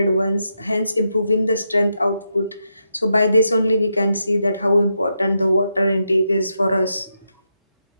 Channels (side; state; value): both; inverted; correlation -0.83